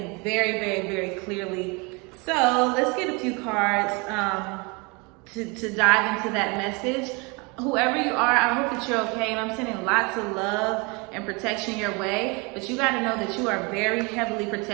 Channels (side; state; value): left; quieter; 29.3 dB